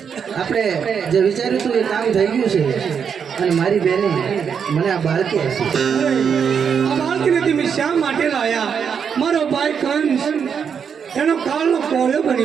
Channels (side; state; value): left; quieter; 7.0 dB